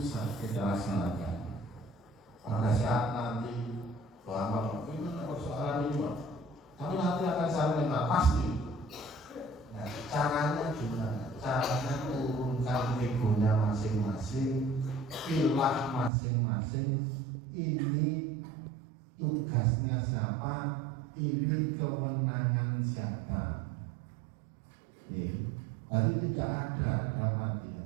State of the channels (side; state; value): left; drops out; at 16.1 s